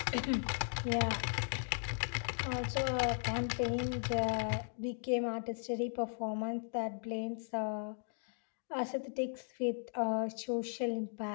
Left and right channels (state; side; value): silent; right; digital silence